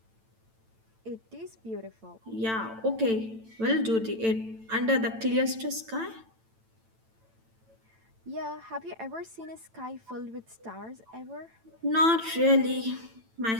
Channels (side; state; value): left; late; 9.0 ms